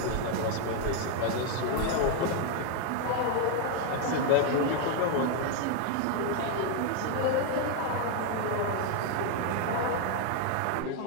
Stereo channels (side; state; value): both; different; correlation 0.01